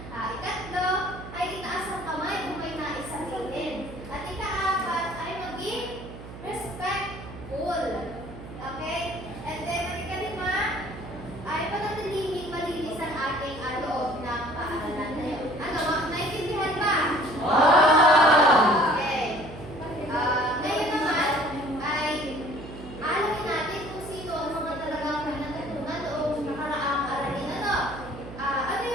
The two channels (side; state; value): right; noise; hum, 13 dB below the sound